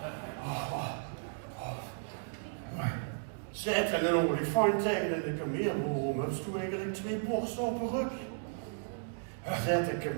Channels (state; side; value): silent; left; digital silence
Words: Zet er een olifant tegen in de kameel. Waarom heb je eigenlijk 2 borsten op een rug? Zet een